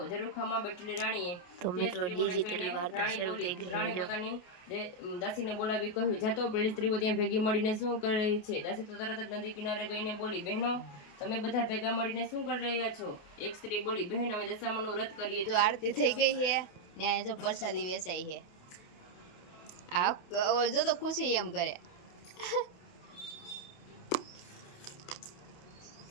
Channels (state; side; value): late; right; 28 ms